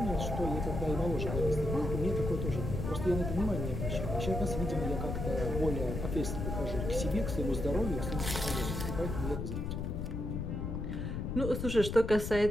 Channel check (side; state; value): left; noise; rumble, 3 dB below the sound